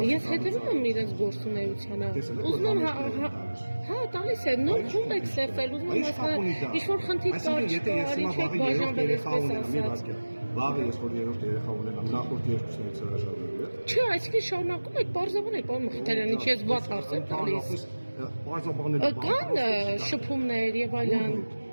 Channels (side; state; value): both; inverted; correlation -1.00